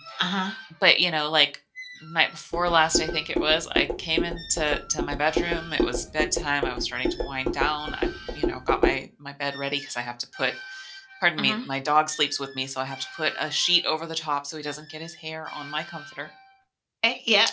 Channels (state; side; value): identical; both; correlation 1.00